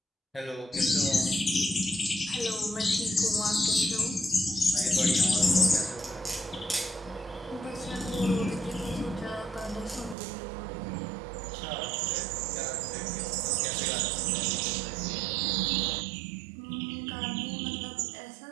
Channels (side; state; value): left; drops out; at 10.2 s